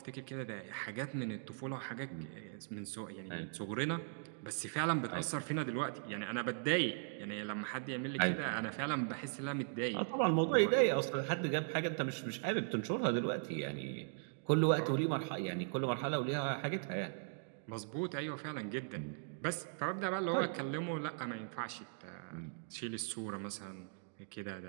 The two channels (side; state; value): left; silent; digital silence